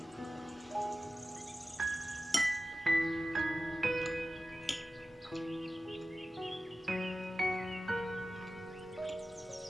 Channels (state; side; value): normal; both; correlation 0.94